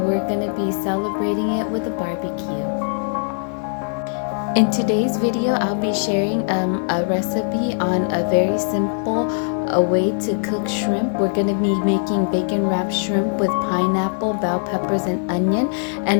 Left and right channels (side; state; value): right; silent; 61 dB below the other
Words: gonna be celebrating it with a barbecue. In today's video, I'll be sharing a recipe on a very simple way to cook shrimp. We're gonna be making bacon wrapped shrimp with pineapple, bell peppers, and onion,